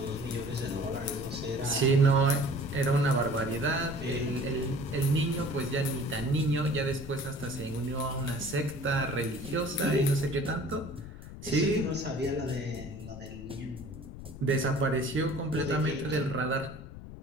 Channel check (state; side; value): noise; left; rumble, 13 dB below the sound